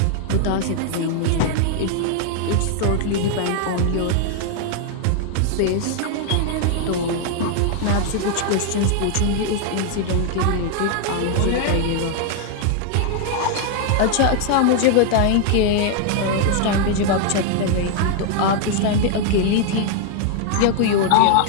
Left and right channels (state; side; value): different; both; correlation 0.00